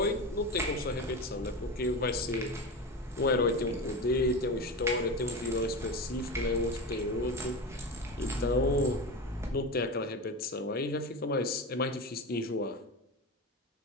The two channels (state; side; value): normal; both; correlation 0.23